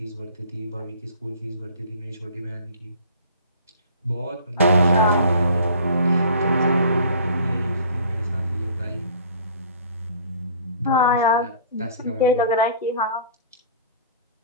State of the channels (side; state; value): both; inverted; correlation -0.47